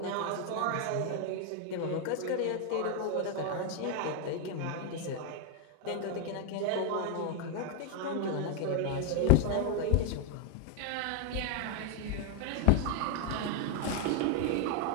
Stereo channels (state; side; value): different; both; correlation 0.00